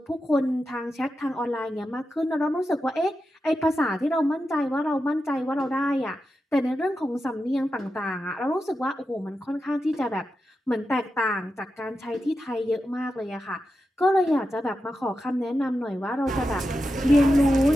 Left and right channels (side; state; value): both; normal; correlation 0.90